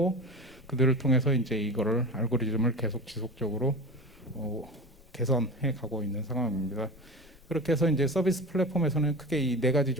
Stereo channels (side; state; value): both; normal; correlation 0.30